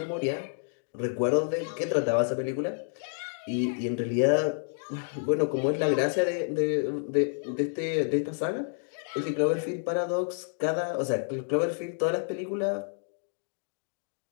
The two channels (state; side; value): silent; right; digital silence